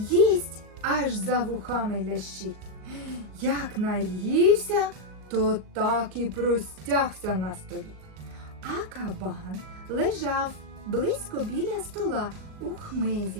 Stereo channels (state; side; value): late; left; 39 ms